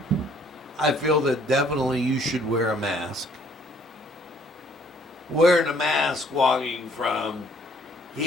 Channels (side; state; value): both; normal; correlation 0.61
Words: I feel that definitely you should wear a mask. Wearing a mask walking from